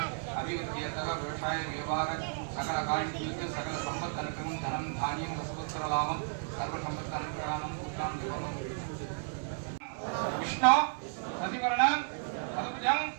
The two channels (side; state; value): left; silent; digital silence